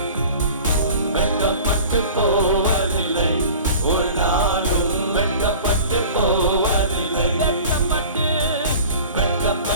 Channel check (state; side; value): inverted; both; correlation -0.42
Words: வெட்கப்பட்டு போவதில்லை, ஒரு நாளும் வெட்கப்பட்டு போவதில்லை,